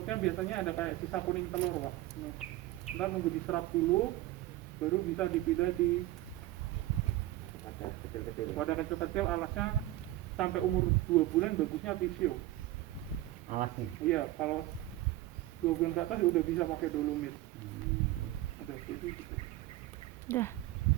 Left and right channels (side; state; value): left; quieter; 16.2 dB